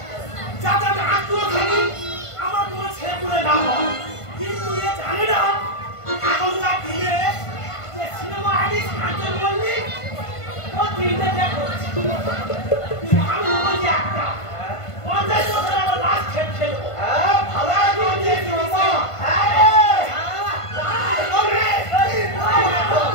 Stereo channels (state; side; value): late; right; 1.5 ms